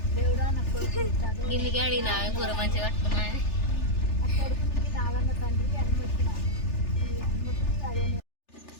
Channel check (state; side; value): late; right; 3.4 ms